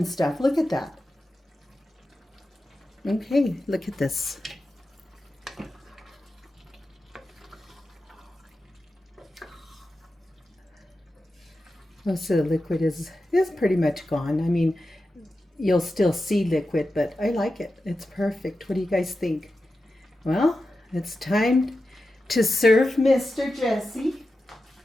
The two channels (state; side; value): normal; both; correlation 0.92